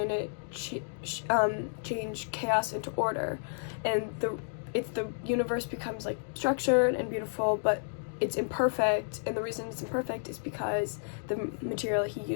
to change chaos into order, and the universe becomes like structured and beautiful, but it's imperfect, and the reason it's imperfect is because the material he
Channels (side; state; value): right; silent; digital silence